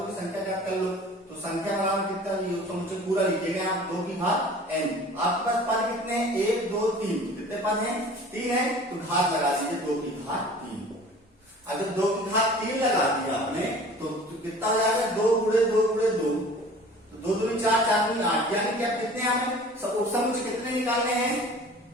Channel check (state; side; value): normal; both; correlation 0.44